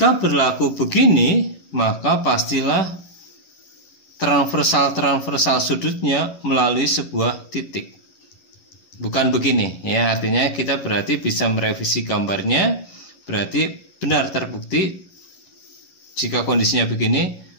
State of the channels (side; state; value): right; late; 11 ms